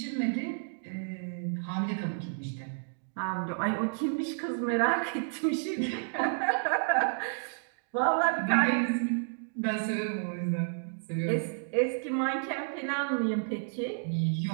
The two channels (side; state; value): left; silent; digital silence